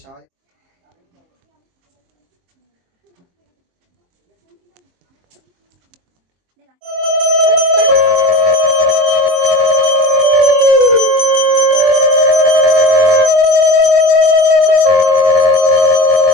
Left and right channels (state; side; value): late; left; 23 ms